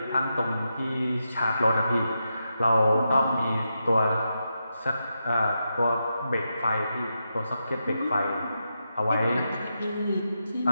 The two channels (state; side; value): inverted; both; correlation -0.86